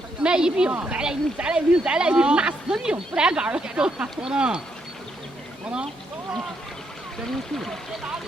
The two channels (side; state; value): both; normal; correlation 0.77